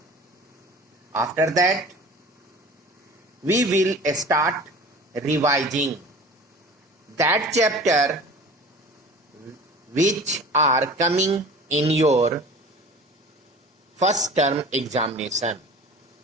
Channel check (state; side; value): normal; both; correlation 0.41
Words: After that, we will start revising that chapter which are coming in your first term examination.